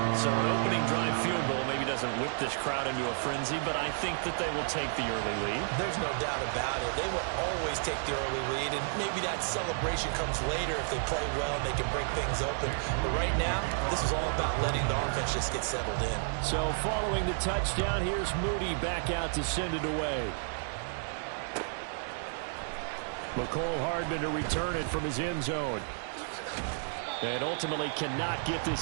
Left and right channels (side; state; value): left; silent; digital silence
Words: So an opening drive field goal maybe doesn't whip this crowd into a frenzy, but I think that they will take the early lead. There's no doubt about it. They will always take the early lead, and maybe that celebration comes later if they play well and they can break things open. But right now, this is all about letting the offense just get settled in. So following the touchdown, here's Moody back out to send it away. McCole Hardman to return it from his end zone. And ultimately cannot get